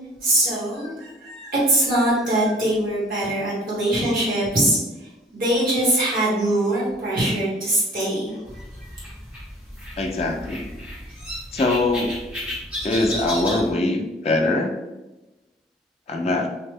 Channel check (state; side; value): normal; both; correlation 0.49